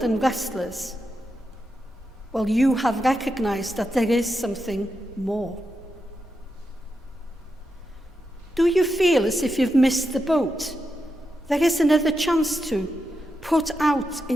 and restless? Well, you have recognized that there is something more. Do you feel as if you've missed the boat? There is another chance to put out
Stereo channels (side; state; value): both; normal; correlation 0.87